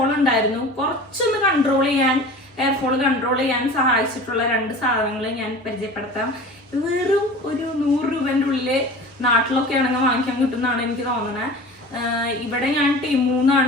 ഉണ്ടായിരുന്നു. കുറച്ചൊന്ന് ഹെയർ ഫോൾ കൺട്രോൾ ചെയ്യാൻ സഹായിച്ചിട്ടുള്ള 2 സാധനങ്ങൾ ഞാൻ പരിചയപ്പെടുത്താം. വെറും ഒരു 100 രൂപൻ്റെ ഉള്ളിൽ നാട്ടിലൊക്കെ ആണെങ്കിൽ വാങ്ങിക്കാൻ കിട്ടുന്നതാണ് എനിക്ക് തോന്നുന്നത്. ഇവിടെ ഞാൻ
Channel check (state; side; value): normal; both; correlation 0.39